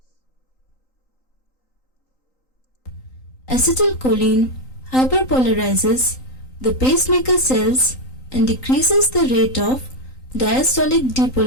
Acetylcholine hyperpolarizes the pacemaker cells and decreases the rate of diastolic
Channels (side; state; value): right; late; 3.9 ms